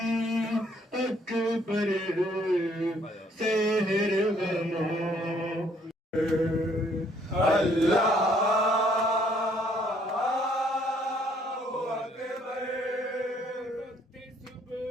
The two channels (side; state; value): both; normal; correlation 0.65